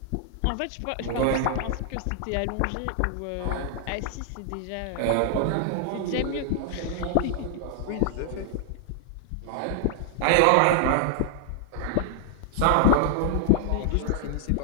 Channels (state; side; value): different; both; correlation 0.00